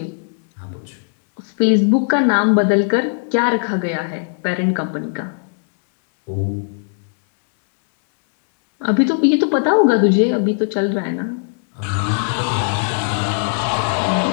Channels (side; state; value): right; silent; 64 dB below the other